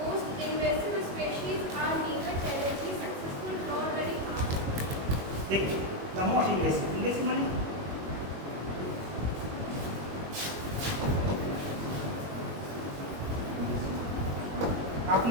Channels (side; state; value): left; late; 21 ms